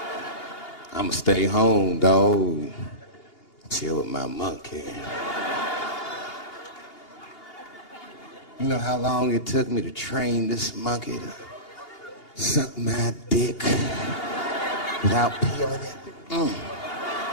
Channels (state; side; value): late; right; 2.8 ms